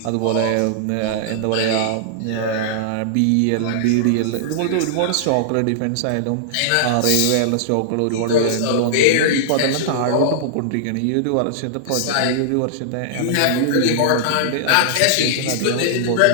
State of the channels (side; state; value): both; different; correlation -0.01